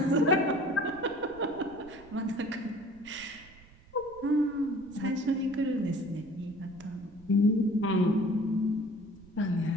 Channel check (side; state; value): right; noise; rumble, 24 dB below the sound